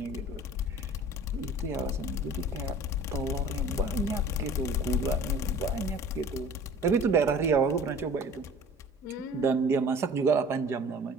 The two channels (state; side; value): normal; both; correlation 0.45